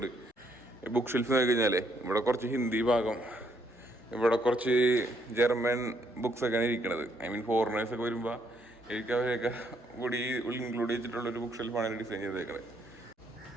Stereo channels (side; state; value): both; normal; correlation 0.71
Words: ഈ ബുക്ക് ഷെൽഫ് നോക്കി കഴിഞ്ഞാൽ ഇവിടെ കുറച്ച് ഹിന്ദി ഭാഗം, ഇവിടെ കുറച്ച് ജർമ്മൻ ബുക്സൊക്കെയാണ് ഇരിക്കുന്നത്. ഐ മീൻ ഫോറിനേഴ്സൊക്കെ വരുമ്പോൾ എനിക്ക് അവരെയൊക്കെ കൂടി ഇൻക്ലൂഡ് ചെയ്തിട്ടുള്ളൊരു ബുക്ക് ഷെൽഫാണ് ഡിസൈൻ ചെയ്തേക്കുന്നത്.